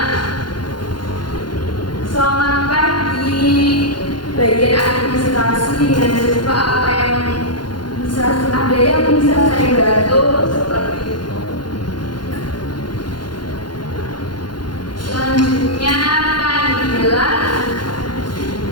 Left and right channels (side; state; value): right; late; 0.71 ms